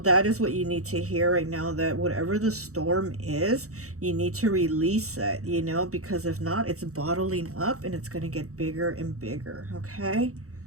is what you need to hear right now, that whatever the storm is, you need to release it, because if not, it's bottling up and it's going to get bigger and bigger. Okay.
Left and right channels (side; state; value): left; late; 0.65 ms